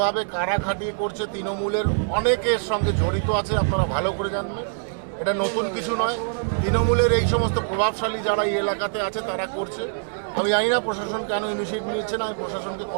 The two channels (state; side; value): silent; left; digital silence